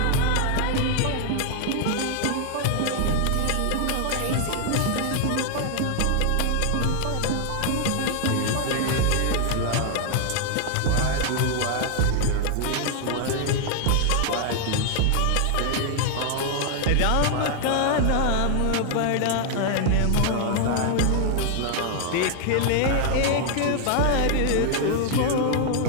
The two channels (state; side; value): different; both; correlation 0.00